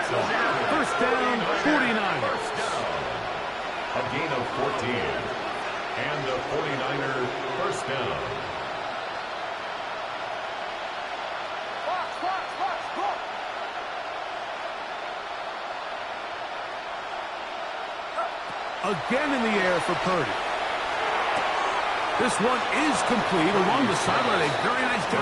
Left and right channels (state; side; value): identical; both; correlation 1.00